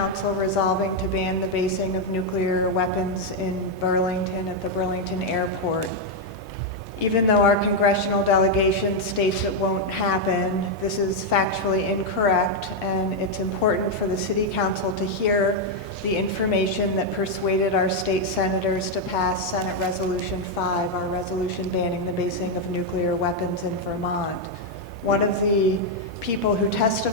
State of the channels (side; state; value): both; normal; correlation 0.00